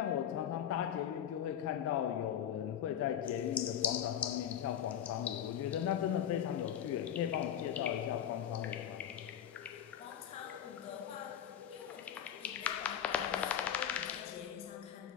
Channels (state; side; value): quieter; right; 9.8 dB